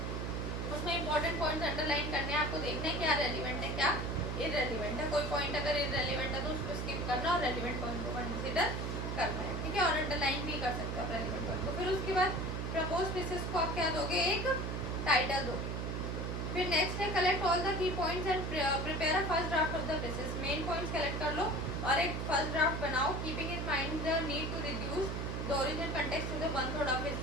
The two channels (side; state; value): right; noise; hum, 2 dB below the sound